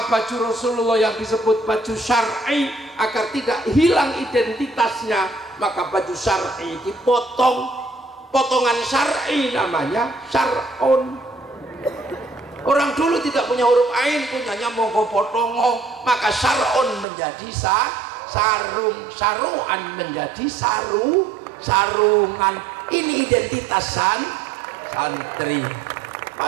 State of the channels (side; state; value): left; drops out; at 17.1 s